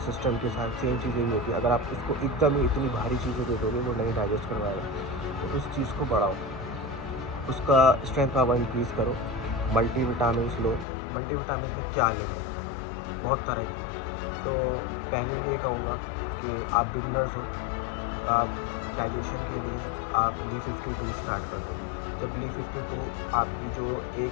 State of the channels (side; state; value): right; drops out; at 10.9 s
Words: के साथ सेम चीज़ यही होती है। अगर आप उसको एकदम ही इतनी भारी चीज़ें दे दोगे, वो नहीं डाइजेस्ट करवाएगा। तो उस चीज़ को बढ़ाओ, उसका स्ट्रेंथ पावर इंक्रीज़ करो, मल्टीविटामिन्स लो। मल्टीविटामिन्स में क्या लेगा? बहुत तरह की है। तो पहले ये कहूँगा कि आप बिगिनर्स हो, आप डाइजेशन के लिए आप Li-52 स्टार्ट कर दो। जब Li-52 आपकी जो